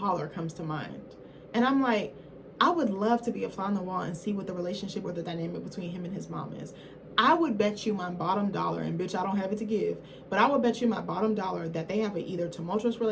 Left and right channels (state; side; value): identical; both; correlation 1.00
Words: comes to mind. And I'm like, I would love to be a fly on the wall and see what the relationship or the dynamic between him and his mom is. I would bet you my bottom dollar, and bitch, I don't have it to give, but I would bet you my bottom dollar that they have an either tumultuous